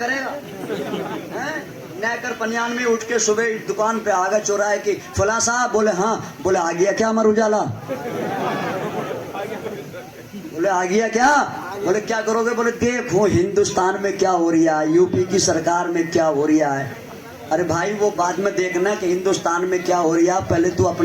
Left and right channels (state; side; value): identical; both; correlation 1.00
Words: گا، نیکر پنیان میں اٹھ کے صبح دکان پہ آگا چوراہے کی، فلاں صاحب، بولے ہاں، بولے آ گیا کیا امر اجالا، بولے آ گیا کیا، بولے کیا کرو گے، بولے دیکھو ہندوستان میں کیا ہو رہا ہے، یو پی کی سرکار میں کیا ہو رہا ہے، ارے بھائی وہ بعد میں دیکھنا کہ ہندوستان میں کیا ہو رہا، پہلے تو